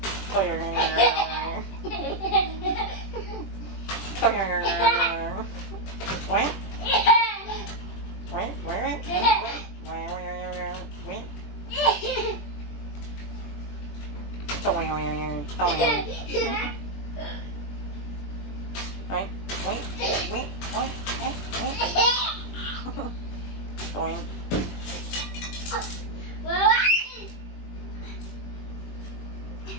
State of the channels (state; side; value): late; right; 21 ms